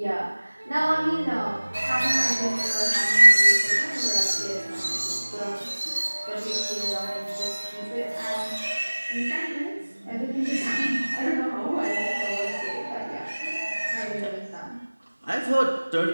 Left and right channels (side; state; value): both; inverted; correlation -1.00